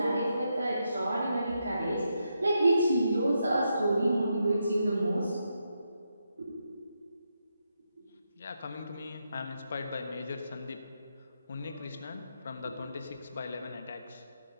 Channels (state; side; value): inverted; both; correlation -0.83